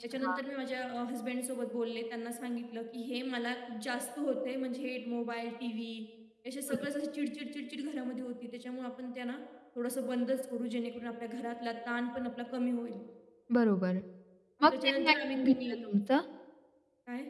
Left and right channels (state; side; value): identical; both; correlation 1.00